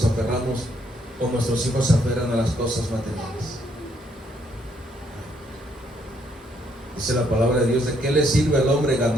aferramos o nuestros hijos se aferran a las cosas materiales? Dice la palabra de Dios, ¿de qué le sirve al hombre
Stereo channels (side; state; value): both; normal; correlation 0.71